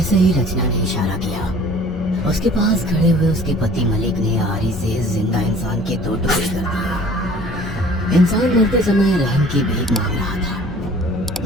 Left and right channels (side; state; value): both; normal; correlation 0.49